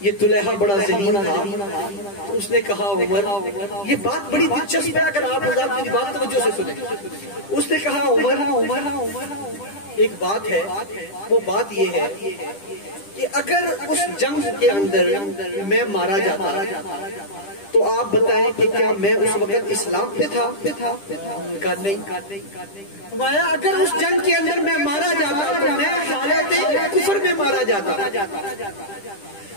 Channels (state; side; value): late; right; 10 ms